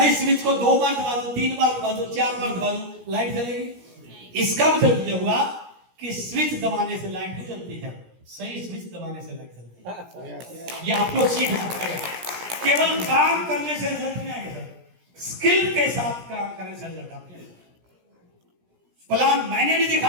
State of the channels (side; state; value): left; late; 17 ms